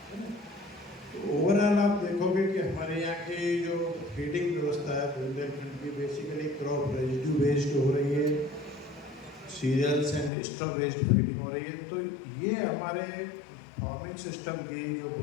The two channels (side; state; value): right; drops out; at 10.3 s